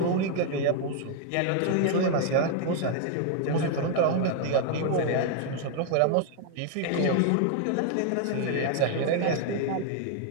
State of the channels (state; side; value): different; both; correlation 0.00